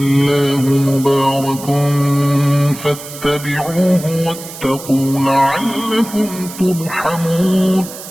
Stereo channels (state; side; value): noise; right; hiss, 13 dB below the sound